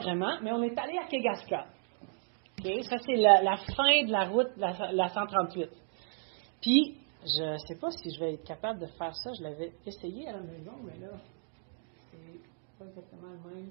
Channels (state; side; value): silent; left; 56 dB below the other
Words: mais on est allé à Kegaska. Okay? Ça, c'est la fin de la route, la 138. Puis, je ne sais pas si je vais être capable de faire ça. Je l'avais essayé à la maison, mais là... pas exactement le même.